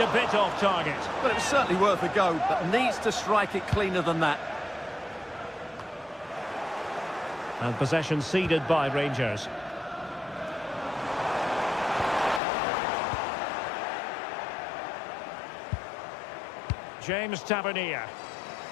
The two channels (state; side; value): drops out; right; at 12.4 s